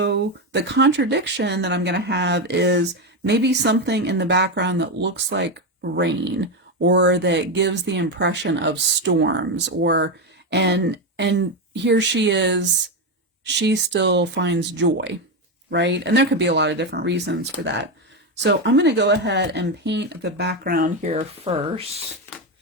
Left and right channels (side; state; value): both; normal; correlation 0.10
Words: the contradiction that I'm going to have is maybe something in the background that looks like rain, or that gives the impression of storms, or and here she is, she still finds joy, right? And there could be a lot of different reasons for that. So I'm going to go ahead and paint the background here first